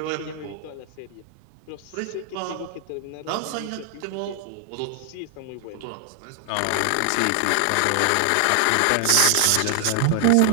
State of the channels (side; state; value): both; different; correlation 0.00